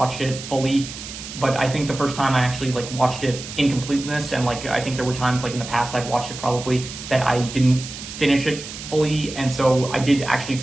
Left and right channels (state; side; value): noise; right; hiss, 11 dB below the sound